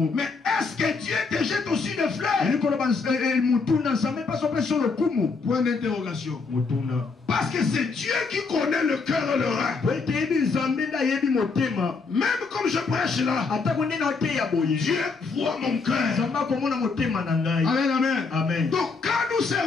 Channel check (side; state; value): right; quieter; 4.5 dB